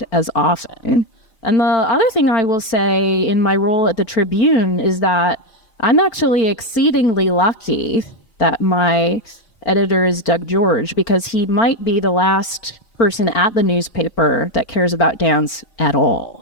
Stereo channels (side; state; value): right; late; 4.4 ms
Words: as often. And the other thing I will say in my role at the Tribune is that I'm actually exceedingly lucky that my editor is Doug George, because he might be the last person at the newspaper that cares about dance at all.